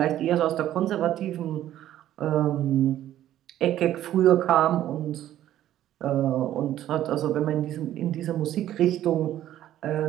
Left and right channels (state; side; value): quieter; left; 12.5 dB